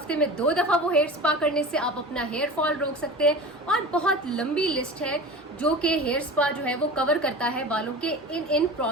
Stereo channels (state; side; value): normal; both; correlation 0.33